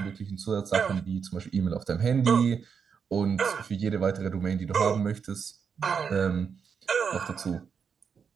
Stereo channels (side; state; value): left; quieter; 6.5 dB